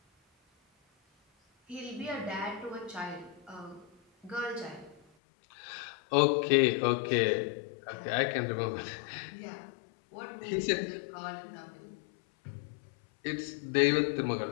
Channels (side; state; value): right; drops out; at 5.0 s